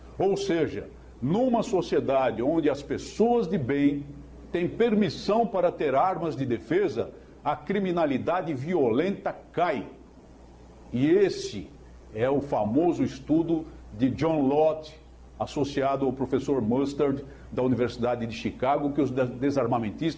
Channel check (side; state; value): both; identical; correlation 1.00